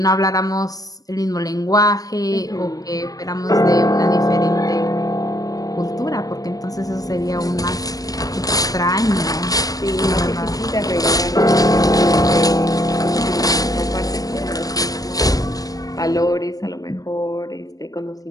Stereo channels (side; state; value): right; late; 0.18 ms